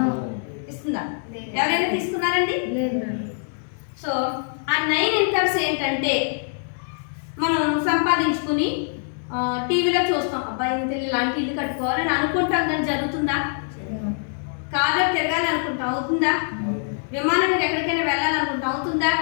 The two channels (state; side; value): silent; right; 63 dB below the other